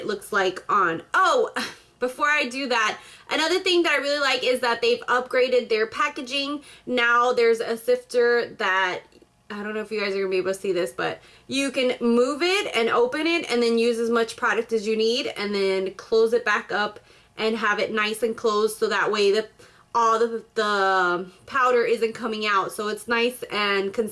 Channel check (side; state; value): both; identical; correlation 1.00